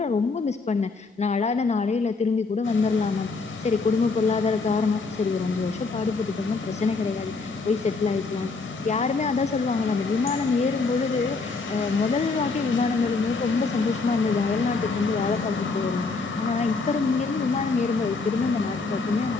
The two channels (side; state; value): right; quieter; 4.1 dB